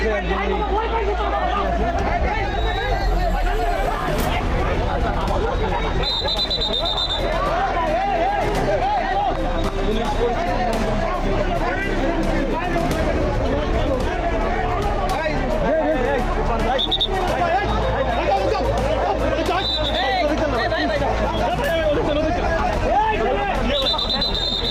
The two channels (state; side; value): identical; both; correlation 1.00